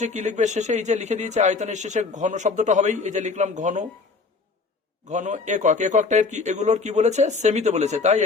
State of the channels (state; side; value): quieter; right; 4.4 dB